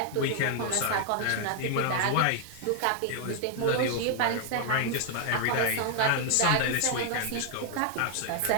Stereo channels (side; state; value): both; different; correlation 0.00